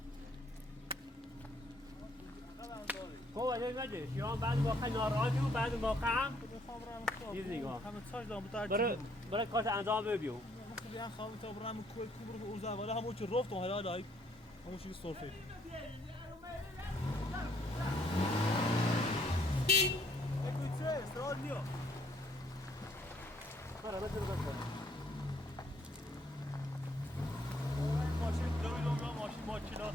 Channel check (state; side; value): normal; both; correlation 0.67